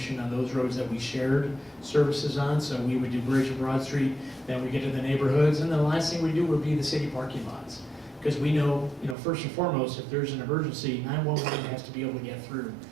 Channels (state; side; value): drops out; left; at 9.2 s